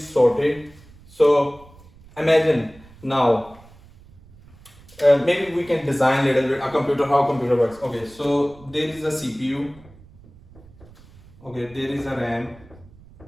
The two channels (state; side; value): noise; right; rumble, 24 dB below the sound